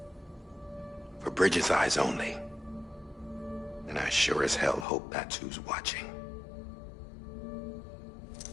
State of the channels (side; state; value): right; drops out; at 4.9 s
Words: For Bridget's eyes only. And I sure as hell hope that's who's watching.